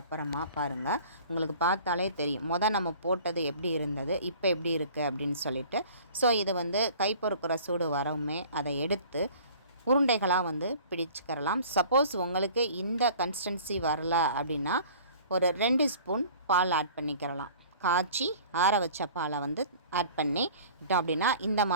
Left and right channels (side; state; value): both; inverted; correlation -0.47